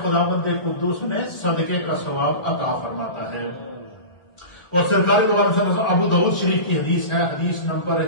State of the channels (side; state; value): right; late; 1.4 ms